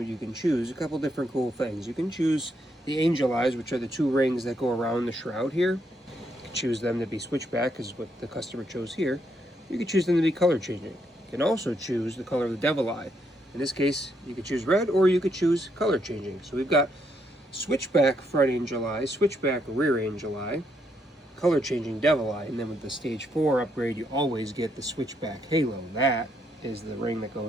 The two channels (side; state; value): both; normal; correlation 0.76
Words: you can choose a couple different cool things. You can choose the angel eyes, which are the two rings that go around the shroud here. You can choose them to be switchback, is what the customer chose here. You can choose them to be color changing. You can also choose the color of the devil eye. In this case, you could choose red or you could choose color changing. So we've got switchback front angel eye, switchback rear angel eye, color changing devil eye, and then with the stage 4 upgrade you always get the switchback halo. That is the ring that